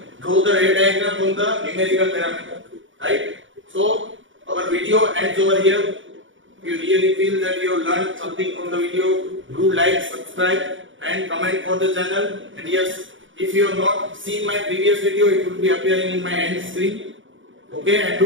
draw the ray diagram from the numerical parameter, right? So our video ends over here. If you really feel that you have learned something from the video, do like, subscribe and comment for the channel. And yes, if you have not seen my previous video, it will be appearing in my end screen. Okay, and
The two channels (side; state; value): left; late; 0.56 ms